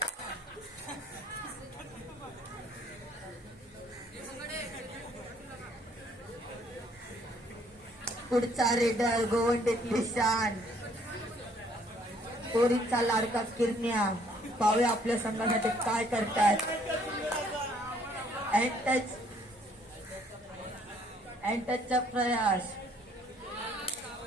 पुढचा रेडर गोवंडीतली शान पोरीचा लाडका किरण्या. पाहूया आपल्या संघासाठी काय करतात. अँटचचा प्रयास.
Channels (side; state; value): both; normal; correlation 0.63